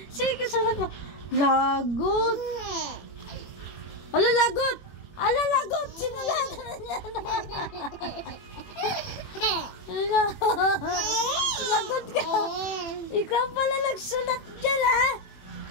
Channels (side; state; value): right; late; 21 ms